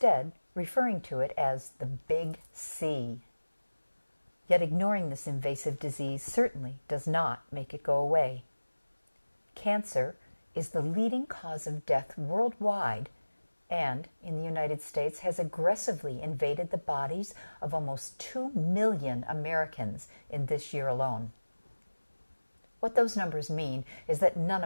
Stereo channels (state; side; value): inverted; both; correlation -1.00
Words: referring to it as the big C. Yet ignoring this invasive disease certainly does not make it go away. Cancer is the leading cause of death worldwide and, in the United States, has aggressively invaded the bodies of almost 2 million Americans in this year alone. What those numbers mean is that none